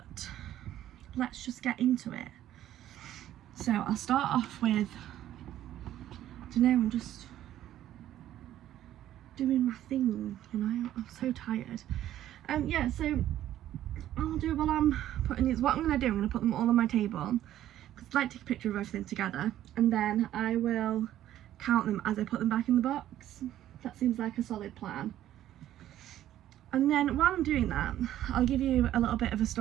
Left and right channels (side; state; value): left; quieter; 12.5 dB